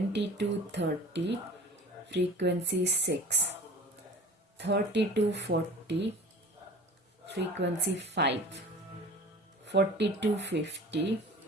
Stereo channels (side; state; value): both; normal; correlation 0.40